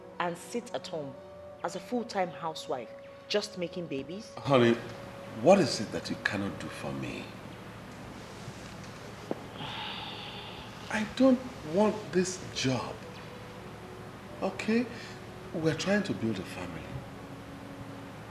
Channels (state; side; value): identical; both; correlation 1.00